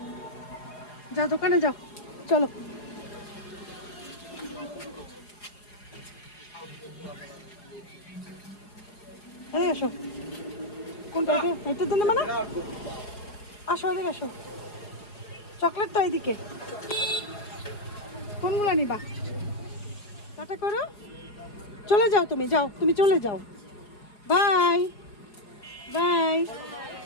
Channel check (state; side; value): late; right; 4.8 ms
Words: যাও দোকানে যাও, চলো। এই আসো, কোনটা? এটা দিন মানে, আসো এদিকে আসো, চকলেট তো এইদিকে, কোনগুলো নিবা? টাটা করো, চলে যাও, তুমি যাও, তুমি চলে যাও, বাই বাই।